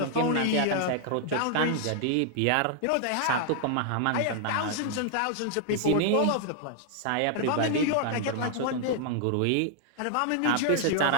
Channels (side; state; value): both; different; correlation 0.00